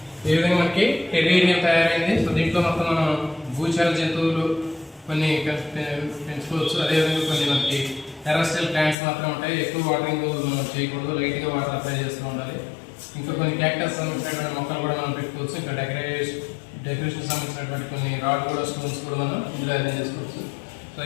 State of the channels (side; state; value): right; drops out; at 9.0 s